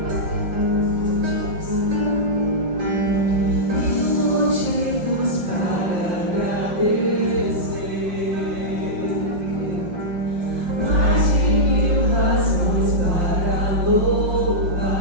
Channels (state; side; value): late; left; 5.5 ms